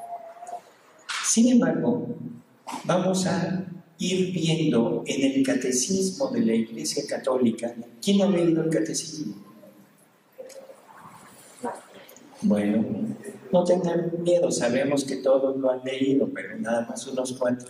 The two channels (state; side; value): identical; both; correlation 1.00